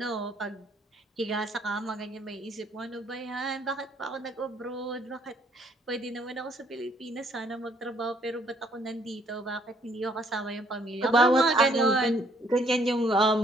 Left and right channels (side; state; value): both; normal; correlation 0.65